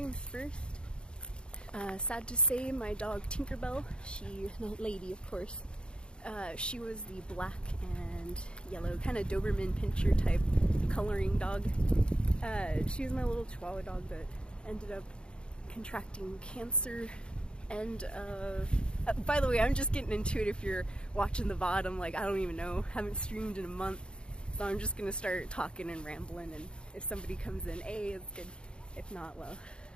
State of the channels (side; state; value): right; late; 0.052 ms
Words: first. Sad to say, my dog Tinkerbell, lady of course, she was the black and yellow, kind of Doberman Pinscher type coloring dog. She was my little Chihuahua dog that ended up contracting cancer. And by the way, I'm just getting into it. If you're watching the VOD, I'm like, I don't even know, haven't streamed in a month, so I'm just gonna start talking and rambling, and if somebody comes in, it's good. If not, well,